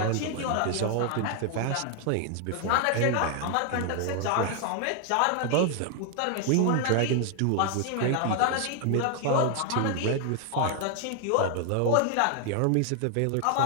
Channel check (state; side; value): different; both; correlation 0.00